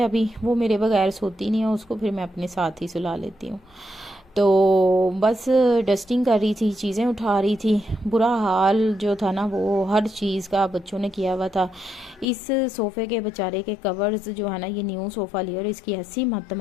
अभी, वो मेरे बगैर सोती नहीं है, उसको फिर मैं अपने साथ ही सुला लेती हूँ। तो बस डस्टिंग कर रही थी, चीज़ें उठा रही थी। बुरा हाल जो था ना वो हर चीज़ का बच्चों ने किया हुआ था। इस सोफ़े के बेचारे के कवर्स जो है ना, ये न्यू सोफ़ा लिया और इसकी ऐसी मत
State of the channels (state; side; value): drops out; right; at 12.2 s